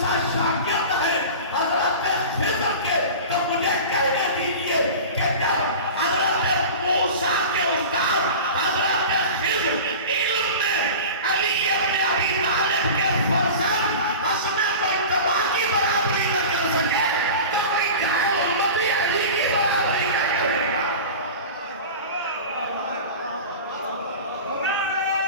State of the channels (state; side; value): inverted; both; correlation -0.33